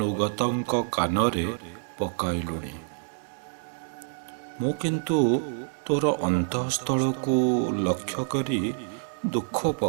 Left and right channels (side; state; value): left; silent; digital silence